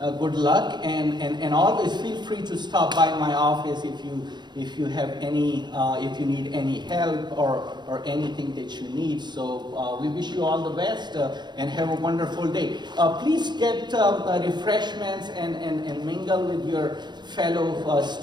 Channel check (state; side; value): late; left; 0.21 ms